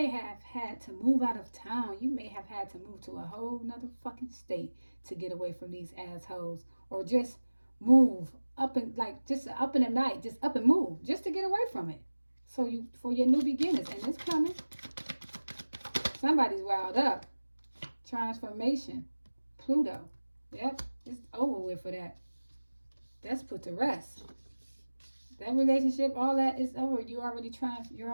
have had to move out of town. You may have had to move to a whole nother fucking state to get away from these assholes. Or just move up and just up in the night. Just up and move. Just to get away from it. So for your new beginnings. And it's coming. Somebody's wild up. Transformation. Pluto. Yep. It's over with for that. That's put to rest. That relationship, all that is over. You're already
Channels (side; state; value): both; inverted; correlation -1.00